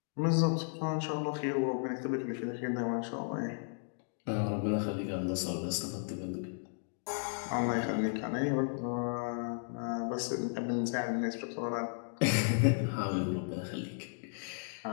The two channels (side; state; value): right; silent; digital silence